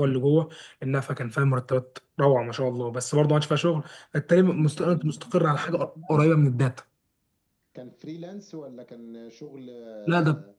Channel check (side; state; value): both; identical; correlation 1.00